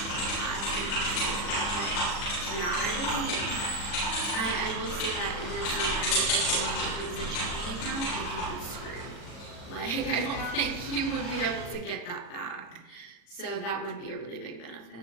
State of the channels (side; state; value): right; late; 40 ms